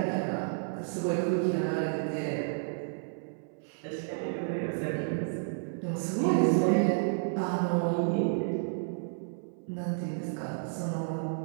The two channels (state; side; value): silent; left; 57 dB below the other